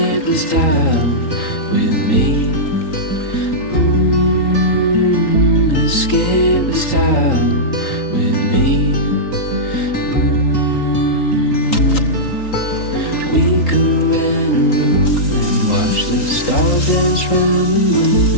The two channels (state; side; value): late; right; 3.8 ms